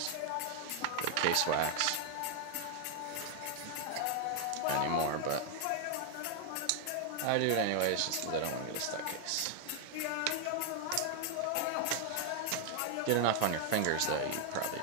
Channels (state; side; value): different; both; correlation 0.00